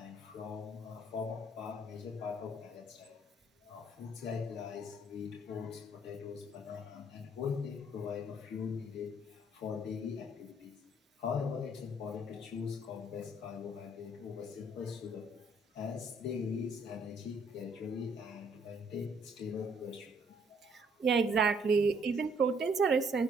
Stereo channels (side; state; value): both; normal; correlation 0.64